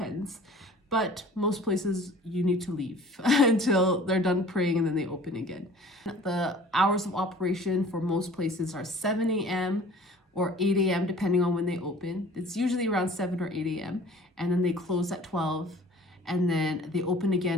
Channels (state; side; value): normal; both; correlation 0.47